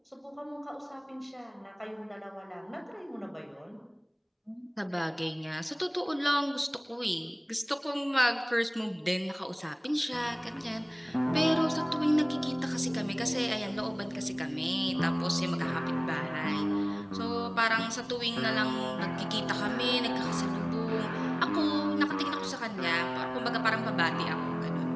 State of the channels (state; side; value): identical; both; correlation 1.00